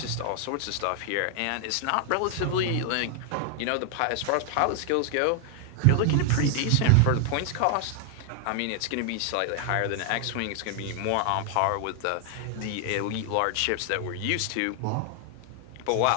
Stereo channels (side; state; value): both; different; correlation 0.00